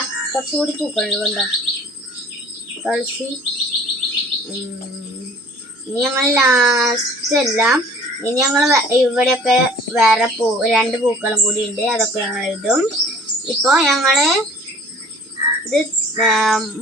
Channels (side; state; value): both; normal; correlation 0.50